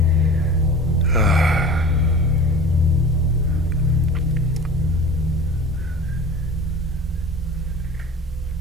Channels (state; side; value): normal; both; correlation 0.38